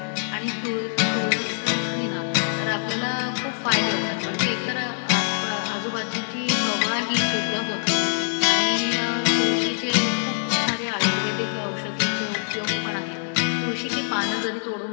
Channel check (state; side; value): silent; right; digital silence